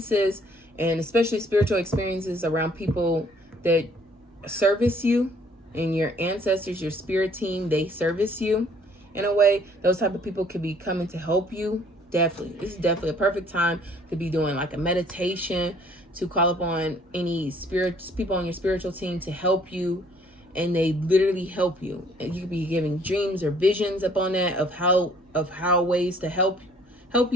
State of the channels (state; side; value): normal; both; correlation 0.60